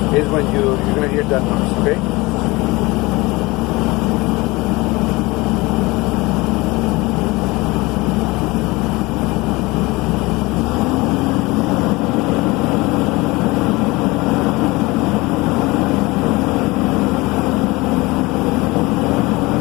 is when you're gonna hear that noise, okay?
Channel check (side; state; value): right; quieter; 22.6 dB